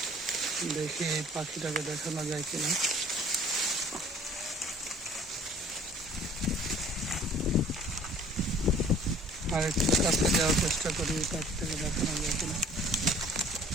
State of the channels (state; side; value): normal; both; correlation 0.52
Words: দেখি এই পাখিটাকে দেখানো যায় কিনা। আর একটু কাছে যাওয়ার চেষ্টা করি, পাখিটাকে দেখানো যায় কিনা।